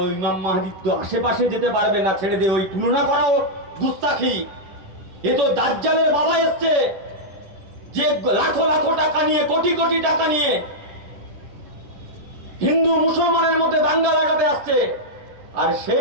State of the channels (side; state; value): left; late; 11 ms